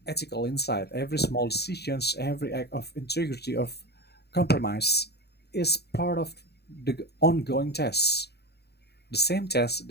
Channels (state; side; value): late; right; 0.48 ms